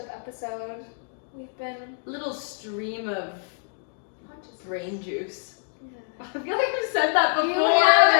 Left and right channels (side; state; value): right; silent; 61 dB below the other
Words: episode. We've been Little stream of conscious. brain juice. Yeah. I feel like we've said that before.